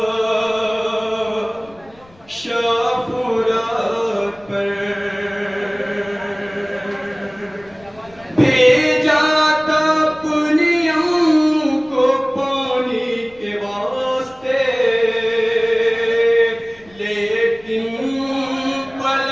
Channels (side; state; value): left; noise; rumble, 27 dB below the sound